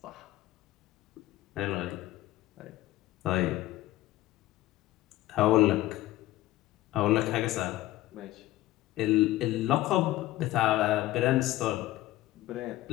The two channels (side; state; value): right; quieter; 16.1 dB